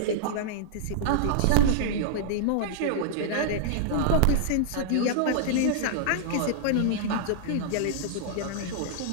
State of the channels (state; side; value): different; both; correlation -0.01